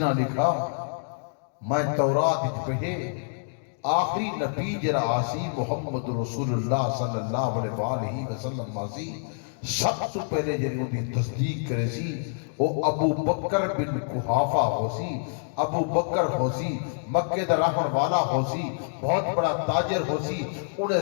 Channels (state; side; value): silent; right; digital silence